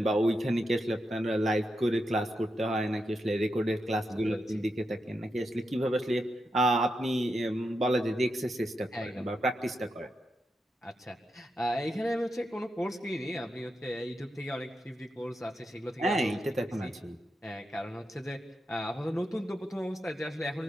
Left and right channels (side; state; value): both; normal; correlation 0.86